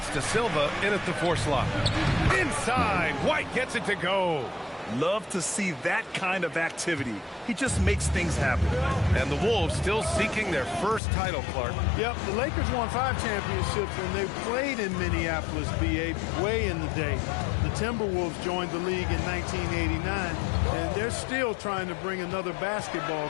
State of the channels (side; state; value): right; drops out; at 11.0 s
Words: De Silva in at the 4 slot. Inside, White gets it to go. Love to see that kind of activity. He just makes things happen. And the Wolves still seeking their first title, Clark. Yep, the Lakers won 5 championships when they played in Minneapolis, BA, way in the day. The Timberwolves joined the league in 1989, and they're still trying to bring another basketball